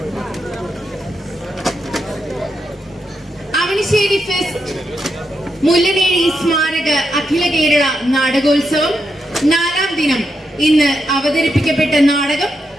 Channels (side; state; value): both; normal; correlation 0.83